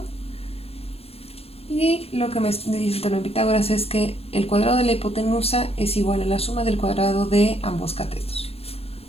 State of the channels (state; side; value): late; right; 0.29 ms